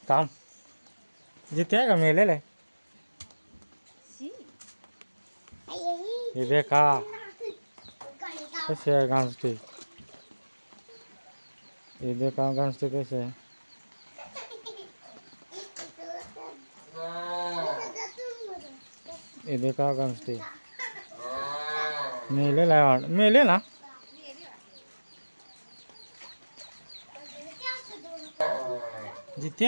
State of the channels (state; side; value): inverted; both; correlation -1.00